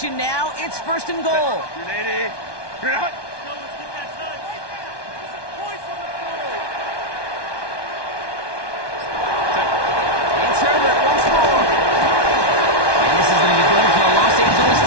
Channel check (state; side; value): late; right; 1.2 ms